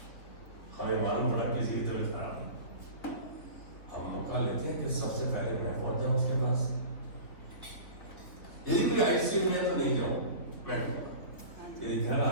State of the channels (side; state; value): right; late; 3.4 ms